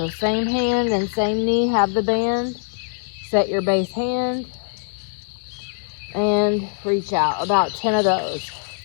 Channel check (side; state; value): right; silent; digital silence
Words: same hand and same knee, have the band. Set your base hand and reach out. About 10 of those.